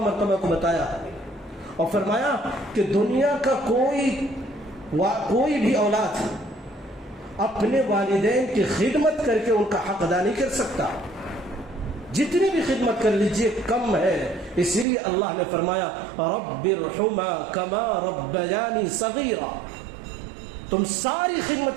مرتبہ کو بتایا، اور فرمایا کہ دنیا کا کوئی بھی اولاد اپنے والدین کی خدمت کر کے ان کا حق ادا نہیں کر سکتا، جتنی بھی خدمت کر لیجئے کم ہے۔ اسی لیے اللہ نے فرمایا رب ارحمھا کما ربیانی صغیرا، تم ساری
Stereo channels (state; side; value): drops out; left; at 14.9 s